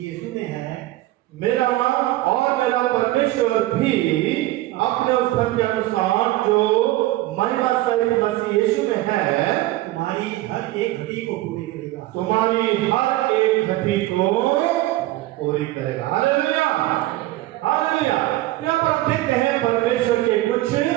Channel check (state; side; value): quieter; left; 16.9 dB